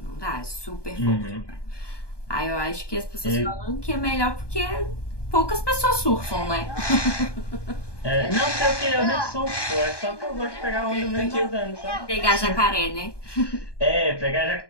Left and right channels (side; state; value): right; late; 1.2 ms